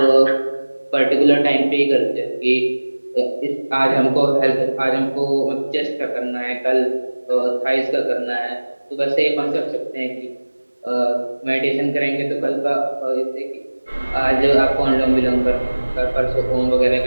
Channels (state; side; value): inverted; both; correlation -1.00